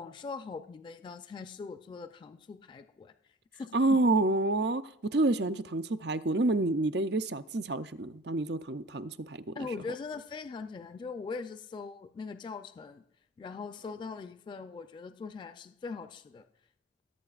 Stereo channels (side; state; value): both; normal; correlation 0.43